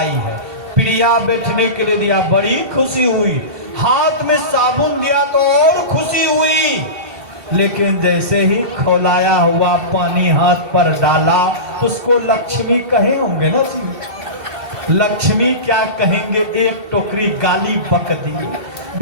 है। पीढ़िया बैठने के लिए दिया, बड़ी खुशी हुई। हाथ में साबुन दिया तो और खुशी हुई। लेकिन जैसे ही खौलाया हुआ पानी हाथ पर डाला तो उसको लक्ष्मी कहे होंगे ना जी। लक्ष्मी क्या कहेंगे, एक टोकरी गाली बक दी।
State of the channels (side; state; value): left; late; 2.7 ms